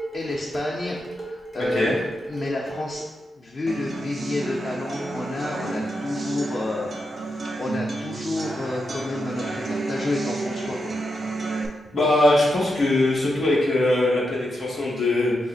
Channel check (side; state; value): both; normal; correlation 0.86